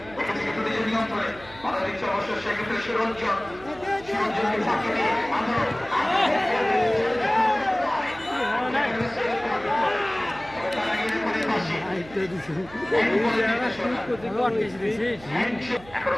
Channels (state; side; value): noise; right; hum, 20 dB below the sound